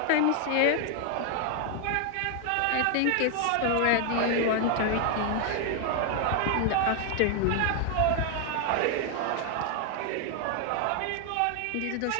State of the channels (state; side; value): different; both; correlation 0.00